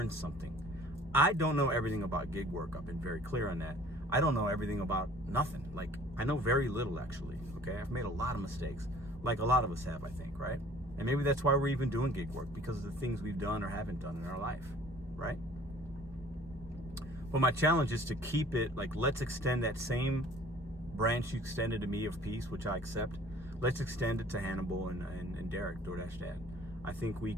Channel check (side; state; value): both; normal; correlation 0.52